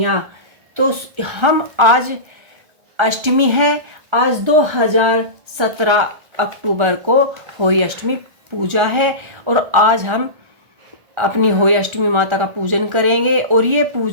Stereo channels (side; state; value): left; late; 1.3 ms